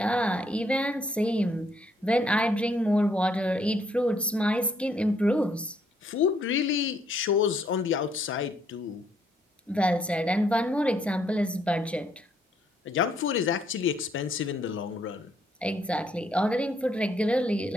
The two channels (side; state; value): both; normal; correlation 0.69